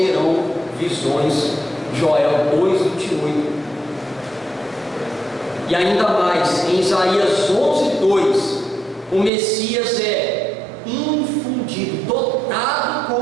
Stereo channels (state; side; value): drops out; left; at 9.3 s